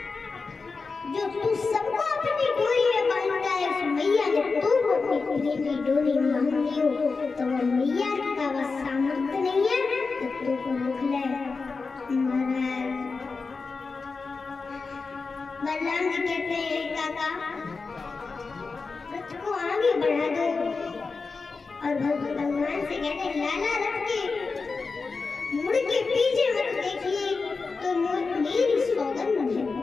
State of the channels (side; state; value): right; quieter; 4.4 dB